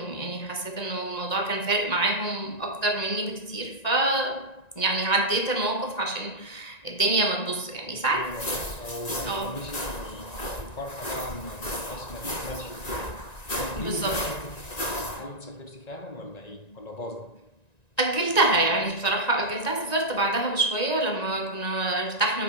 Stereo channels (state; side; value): late; right; 1.9 ms